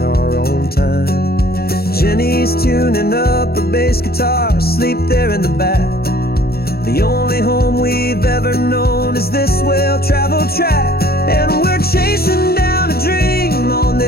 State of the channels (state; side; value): late; right; 0.45 ms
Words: our own time. Jenny's tuning up her bass guitar, asleep there in the back. The only home we've ever known is this well-traveled track. And we're chasing down a dream on